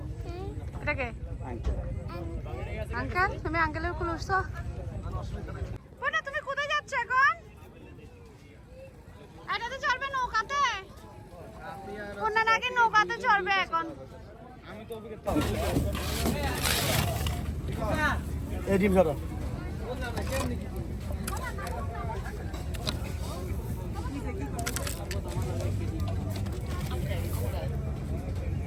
এটাকে আঙ্কেল, তুমি আঙ্কেলের কুল উঠছো? না, তুমি কোথায় যাচ্ছ এখন? এটাতে চড়বে নৌকাতে? কোনটা নাকি নৌকাতে চড়বে এখন? এই ডিম খাওয়া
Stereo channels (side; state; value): both; identical; correlation 1.00